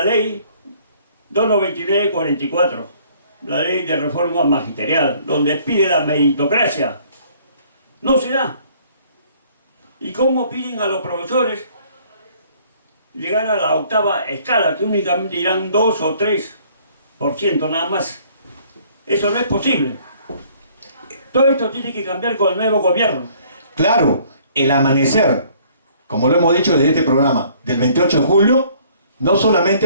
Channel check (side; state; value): both; inverted; correlation -0.59